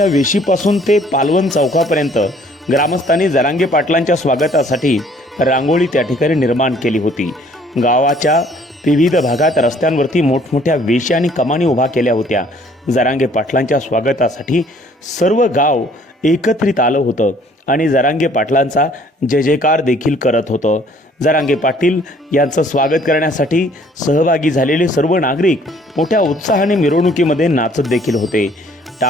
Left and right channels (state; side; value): normal; both; correlation 0.59